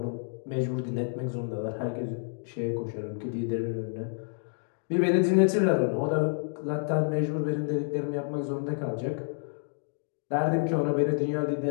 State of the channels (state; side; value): silent; right; digital silence